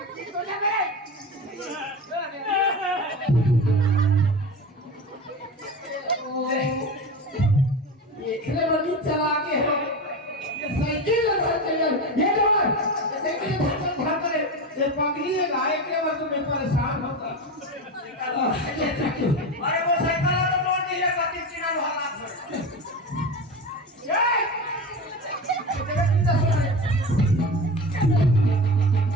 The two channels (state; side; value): normal; both; correlation 0.26